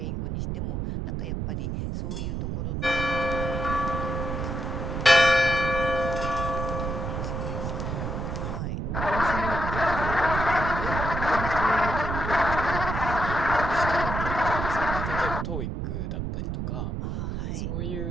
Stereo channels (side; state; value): right; noise; rumble, 3 dB below the sound